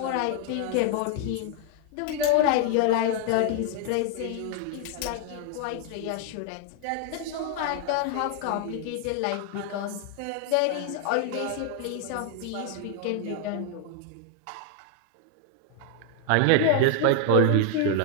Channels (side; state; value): both; different; correlation 0.00